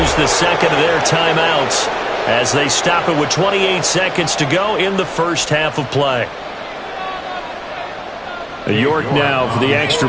the second of their timeouts as they stop it with 28 seconds to go in the first half of play. York now for the extra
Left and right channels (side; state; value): both; identical; correlation 1.00